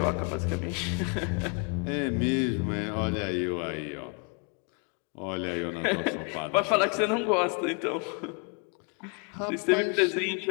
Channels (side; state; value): right; quieter; 35.8 dB